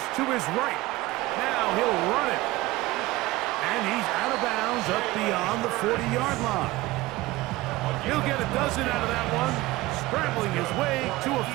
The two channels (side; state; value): left; quieter; 19.0 dB